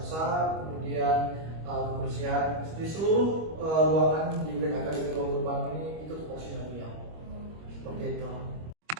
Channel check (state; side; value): late; left; 25 ms